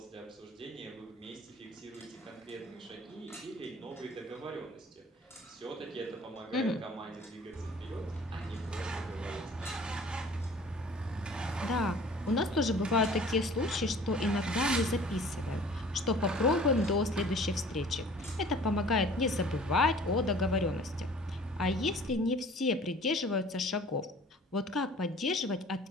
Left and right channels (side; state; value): both; normal; correlation 0.48